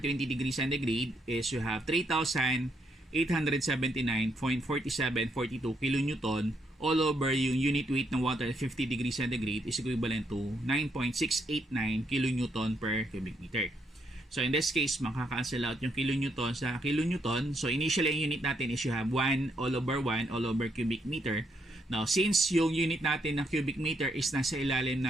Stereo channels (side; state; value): both; normal; correlation 0.75